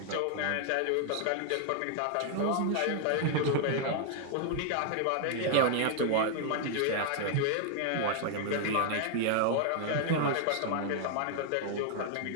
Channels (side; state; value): both; different; correlation 0.00